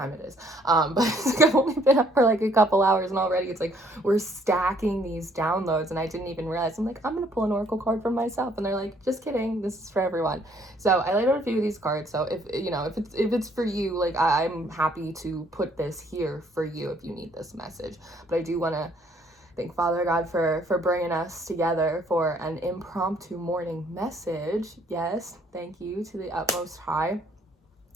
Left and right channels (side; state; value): both; normal; correlation 0.64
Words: it is. But I've only been up for a couple hours, and already it's we're stacking these downloads, and I didn't even realize. I'm I'm gonna pull an oracle card for myself, and they're just kidding, this is for everyone. So I laid out a few of these cards. So if it's for you, I'm happy to put this here for you if you need this message. But I do want to thank Father God for bringing us together for an impromptu morning message. Yes, thank you to the utmost high.